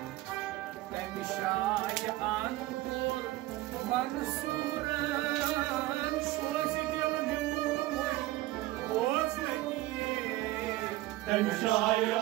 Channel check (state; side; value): quieter; left; 17.7 dB